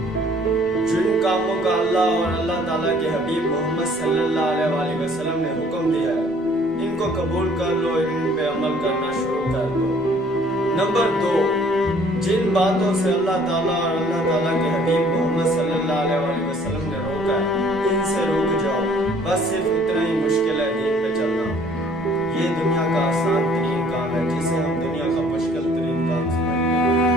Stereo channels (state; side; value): noise; left; rumble, 26 dB below the sound